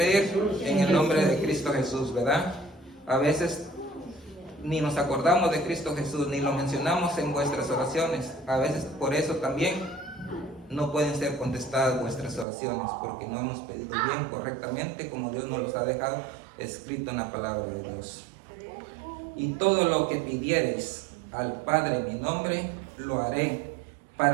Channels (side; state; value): left; drops out; at 12.5 s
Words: En el nombre de Cristo Jesús, ¿verdad? A veces ni nos acordamos de Cristo Jesús, ni lo mencionamos en vuestras oraciones. A veces por eso también no pueden ser contestadas vuestras oraciones, porque no hemos pedido bien, correctamente, como Dios nos los ha dejado escrito en la palabra de Dios. Y todo lo que pidiereis al Padre en mi nombre, lo haré,